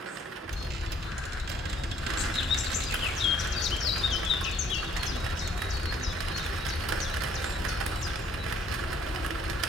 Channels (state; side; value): normal; both; correlation 0.63